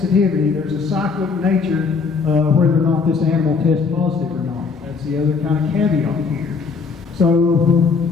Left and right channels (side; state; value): right; quieter; 5.2 dB